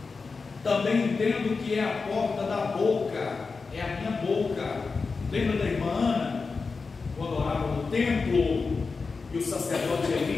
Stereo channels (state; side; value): quieter; right; 4.5 dB